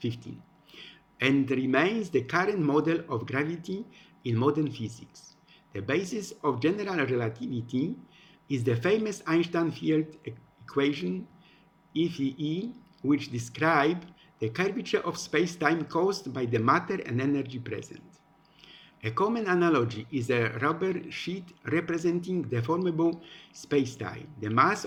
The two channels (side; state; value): both; identical; correlation 1.00